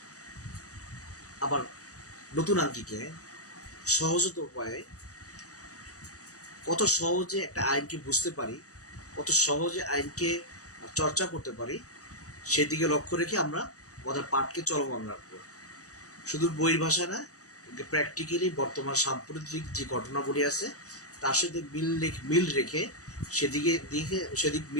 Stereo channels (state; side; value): late; right; 0.66 ms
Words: আবার নতুন আঙ্গিকে সহজত উপায়ে কত সহজে একটা আইনকে বুঝতে পারি, কত সহজে আইনকে চর্চা করতে পারি, সেদিকে লক্ষ্য রেখে আমরা আমাদের পাঠকে চলমান রাখবো। শুধু বইয়ের ভাষা না, প্র্যাকটিক্যালি বর্তমান সাম্প্রতিক যে ঘটনাবলী আছে তার সাথে মিল রেখে সেদিক